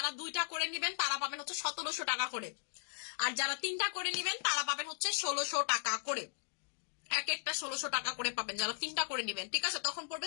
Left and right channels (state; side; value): silent; right; digital silence